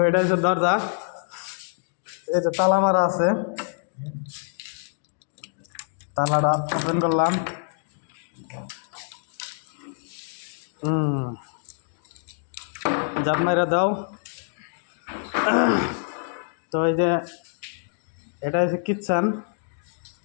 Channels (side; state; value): right; silent; digital silence